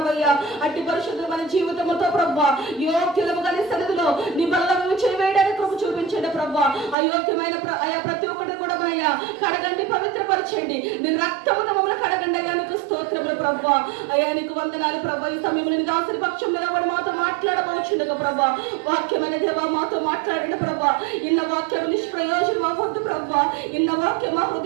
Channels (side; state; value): left; drops out; at 7.0 s